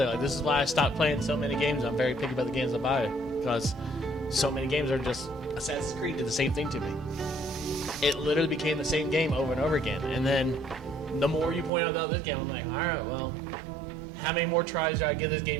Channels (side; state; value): left; drops out; at 11.7 s